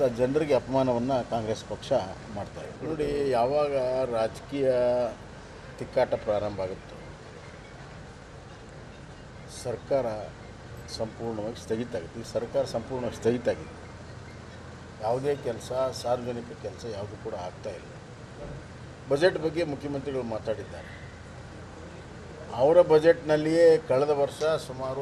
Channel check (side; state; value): both; identical; correlation 1.00